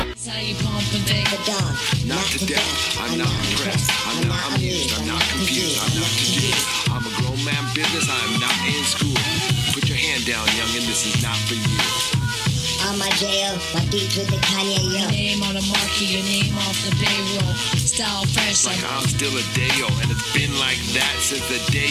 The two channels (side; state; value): both; identical; correlation 1.00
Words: Not to death, I'm not impressed, I'm not amused, I'm not confused, I'm not confused. I'm a grown man business, I'm not in school. Put your hand down, youngin', this is not for you. On my jail, my beats with the Kanye, yo. Your name on the marquee, your name off the payroll. Style fresh like I'm still a Dayo, and it's been like that since the